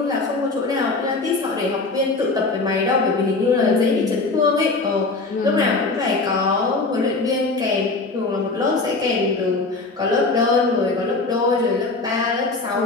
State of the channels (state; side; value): quieter; right; 3.6 dB